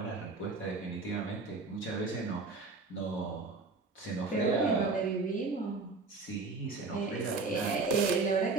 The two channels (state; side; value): quieter; left; 4.0 dB